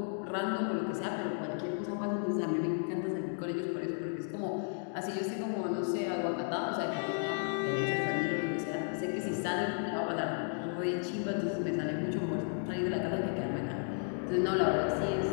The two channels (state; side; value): silent; right; 55 dB below the other